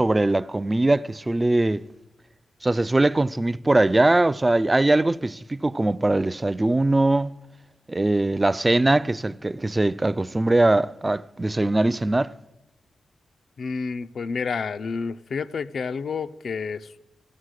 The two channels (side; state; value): both; normal; correlation 0.98